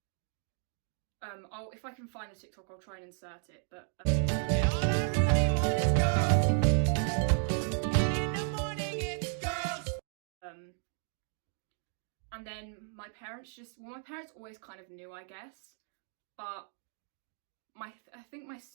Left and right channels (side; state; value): left; silent; 55 dB below the other